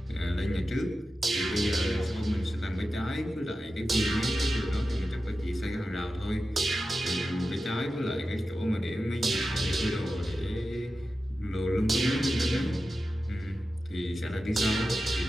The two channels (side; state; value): both; normal; correlation 0.93